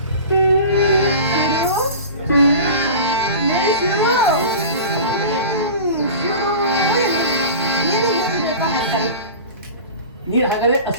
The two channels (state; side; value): inverted; both; correlation -0.35